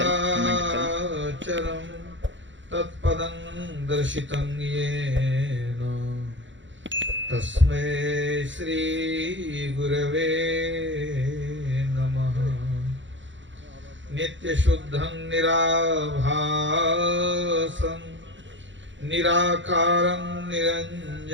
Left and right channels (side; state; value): left; late; 0.54 ms